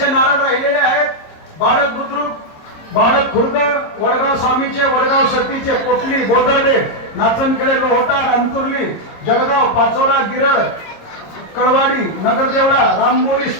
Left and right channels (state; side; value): late; right; 26 ms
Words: नारळ राहिलेले आहेत. बाळक बुद्रुक, बाळक खुर्द, वडगाव स्वामीचे, वडगाव सतीचे, कोटली, बोदर्डे, नाचनखेडे, लोहटार, अंतुर्ली, जळगाव, पाचोरा, गिरड, कळवाडी, नगरदेवळा, राममोरीस,